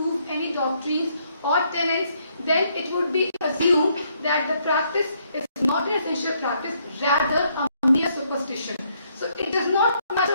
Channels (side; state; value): both; inverted; correlation -0.71